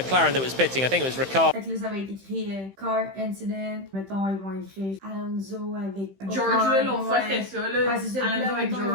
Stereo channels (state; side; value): late; left; 15 ms